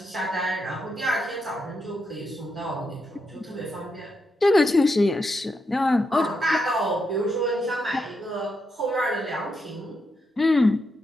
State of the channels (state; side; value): normal; both; correlation 0.82